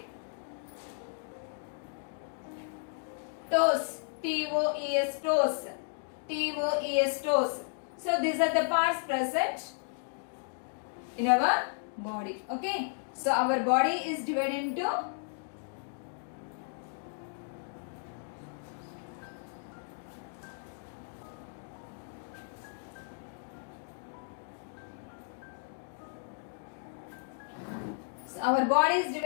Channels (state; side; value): silent; right; digital silence